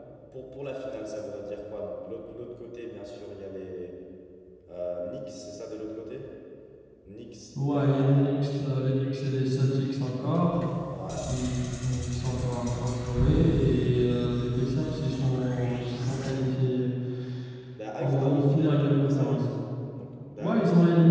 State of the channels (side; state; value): both; identical; correlation 1.00